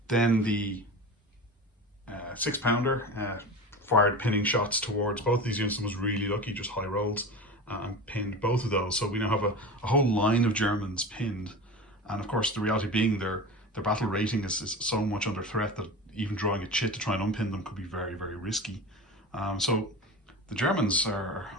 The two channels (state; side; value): normal; both; correlation 0.30